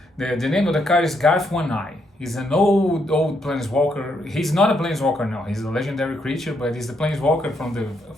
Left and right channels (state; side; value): normal; both; correlation 0.76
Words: The name of the card is Garth One Eye. He's an old planeswalker. He's not a planeswalker now. He's a legendary creature, but he's the planeswalker from the